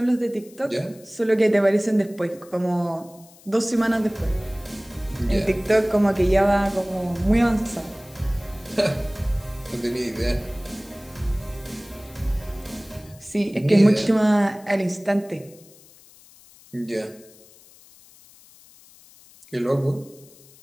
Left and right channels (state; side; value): noise; left; hiss, 25 dB below the sound